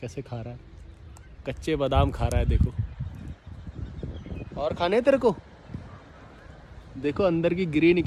खा रहा है, कच्चे बादाम खा रहा है। देखो, और खाने तेरे को, देखो अंदर की गिरी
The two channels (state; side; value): identical; both; correlation 1.00